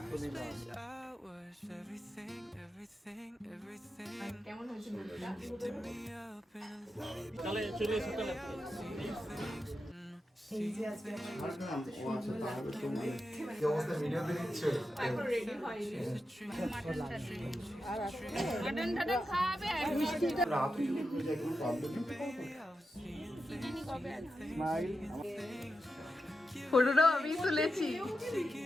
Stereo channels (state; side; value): normal; both; correlation 0.89